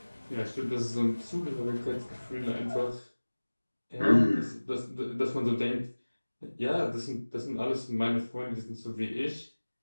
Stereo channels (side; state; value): both; inverted; correlation -1.00